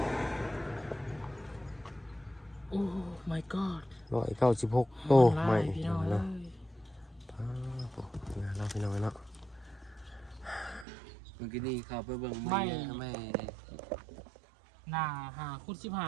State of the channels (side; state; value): left; drops out; at 10.9 s